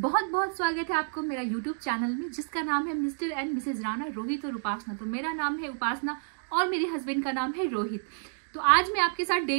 बहुत स्वागत है आपको मेरा यूट्यूब चैनल में, जिसका नाम है Mr and Mrs Rana, Rohit और उपासना। तो मेरा नाम है उपासना और मेरे हस्बैंड का नाम है रोहित। तो आज मैं आपके साथ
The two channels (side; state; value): left; silent; digital silence